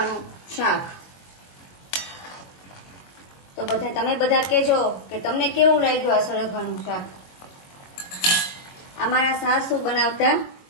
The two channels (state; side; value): late; right; 22 ms